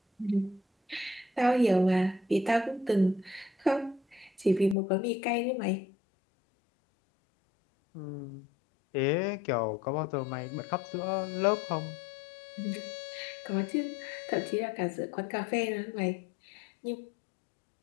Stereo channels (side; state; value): right; drops out; at 4.8 s